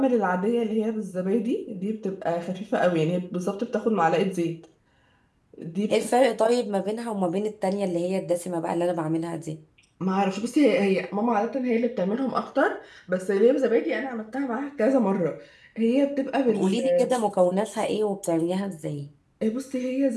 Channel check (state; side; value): identical; both; correlation 1.00